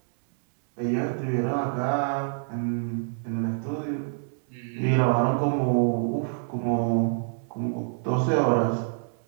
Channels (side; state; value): left; silent; 60 dB below the other